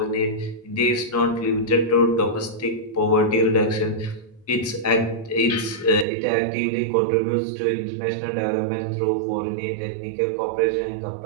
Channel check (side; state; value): left; drops out; at 6.1 s